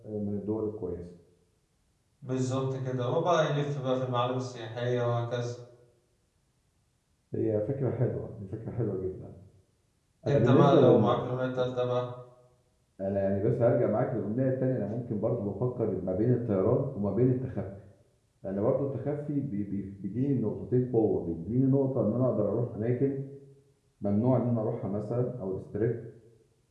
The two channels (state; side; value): identical; both; correlation 1.00